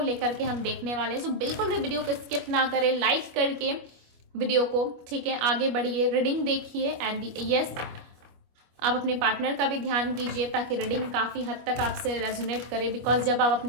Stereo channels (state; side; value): late; left; 25 ms